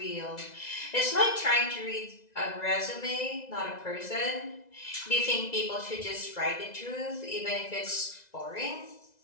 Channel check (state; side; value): late; right; 2.0 ms